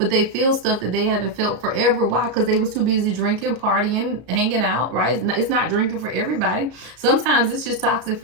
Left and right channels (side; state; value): left; late; 33 ms